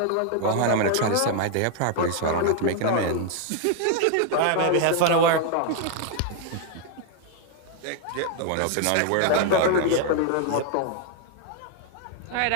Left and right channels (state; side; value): different; both; correlation 0.00